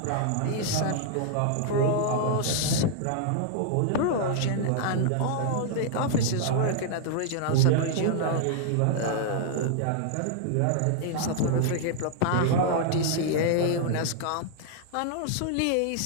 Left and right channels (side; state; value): both; different; correlation -0.01